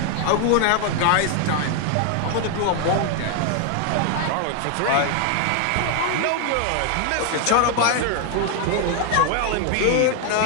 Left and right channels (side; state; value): both; different; correlation 0.00